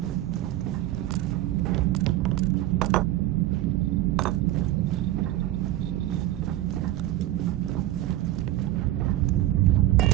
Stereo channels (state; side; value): quieter; left; 15.0 dB